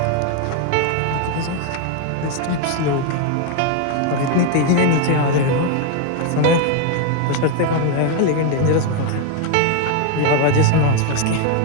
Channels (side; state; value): both; different; correlation 0.01